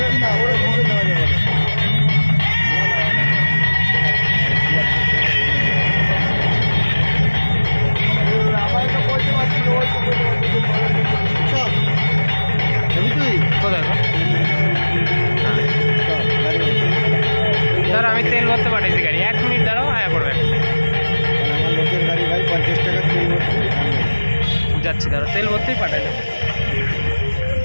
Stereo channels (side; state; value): both; inverted; correlation -1.00